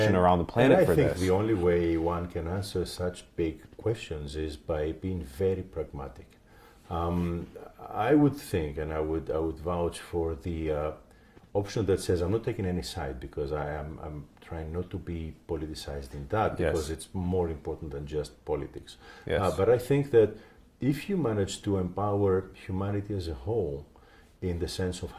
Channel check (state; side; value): identical; both; correlation 1.00